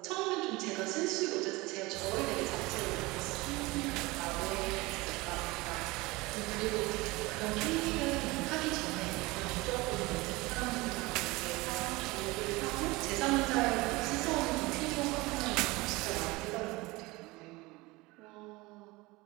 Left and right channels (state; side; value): quieter; left; 22.3 dB